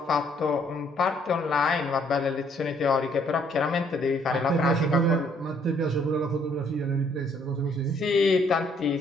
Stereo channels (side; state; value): both; normal; correlation 0.66